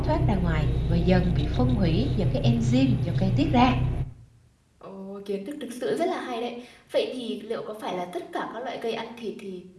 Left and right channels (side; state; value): both; identical; correlation 1.00